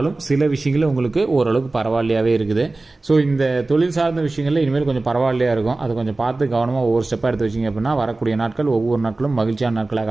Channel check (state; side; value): quieter; left; 3.2 dB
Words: சில விஷயங்களில் உங்களுக்கு ஓரளவுக்கு பரவாயில்லையாகவே இருக்குது. ஸோ இந்த தொழில் சார்ந்த விஷயங்களில் இனிமேல் கொஞ்சம் பரவாயில்லையாக இருக்கும். அதை கொஞ்சம் பார்த்து கவனமாக ஒவ்வொரு ஸ்டெப்பாக எடுத்து வச்சிங்க அப்படின்னா வரக்கூடிய நாட்கள் ஒவ்வொரு நாட்களும் மகிழ்ச்சியான